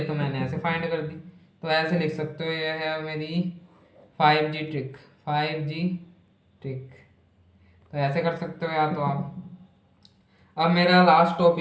मैंने ऐसे फाइंड कर दी। तो ऐसे लिख सकते हो, यह है मेरी 5G ट्रिक, 5G ट्रिक। तो ऐसे कर सकते हो या तो आप। अब मेरा लास्ट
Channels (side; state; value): both; identical; correlation 1.00